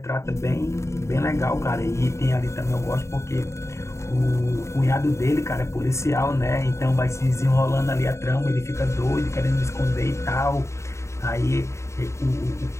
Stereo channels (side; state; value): right; late; 0.14 ms